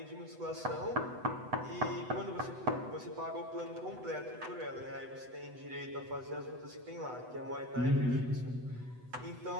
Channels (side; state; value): left; late; 8.0 ms